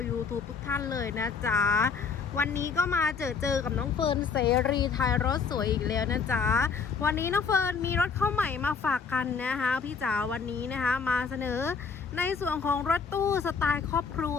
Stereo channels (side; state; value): right; quieter; 5.6 dB